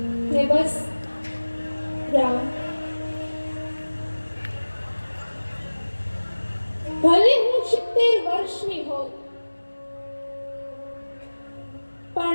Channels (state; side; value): inverted; both; correlation -1.00